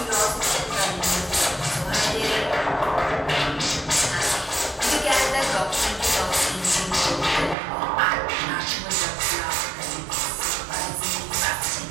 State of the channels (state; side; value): drops out; left; at 7.6 s